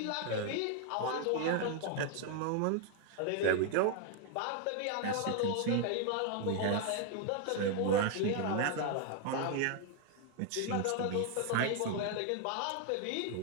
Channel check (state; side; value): different; both; correlation 0.00